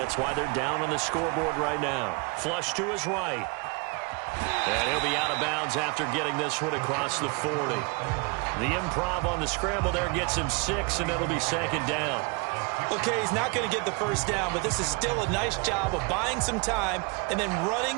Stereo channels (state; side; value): quieter; left; 30.6 dB